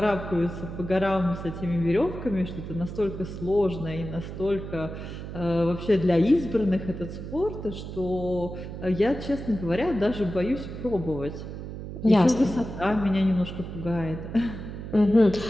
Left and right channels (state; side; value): noise; right; hum, 9 dB below the sound